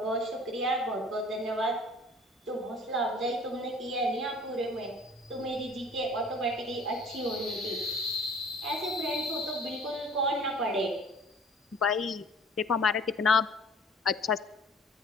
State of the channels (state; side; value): normal; both; correlation 0.49